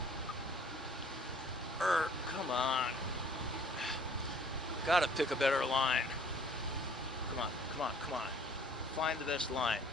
Come on. Gotta pick a better line. Come on, come on, come on. Find the best line.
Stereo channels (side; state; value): both; normal; correlation 0.55